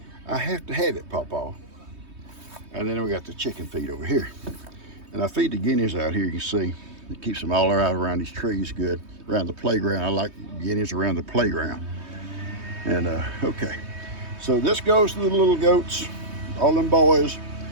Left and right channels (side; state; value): left; late; 3.2 ms